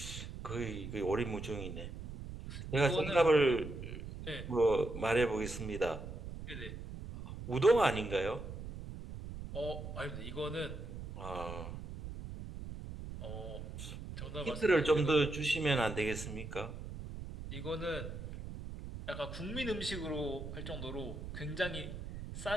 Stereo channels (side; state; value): right; noise; rumble, 9 dB below the sound